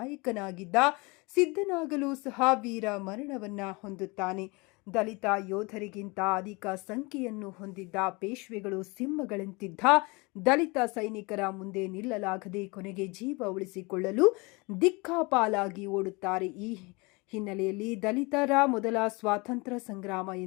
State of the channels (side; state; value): right; quieter; 26.8 dB